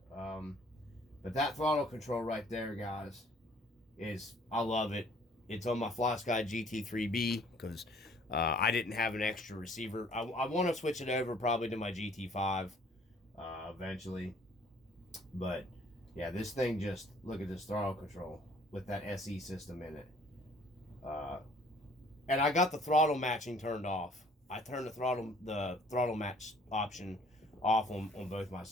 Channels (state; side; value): normal; both; correlation 0.57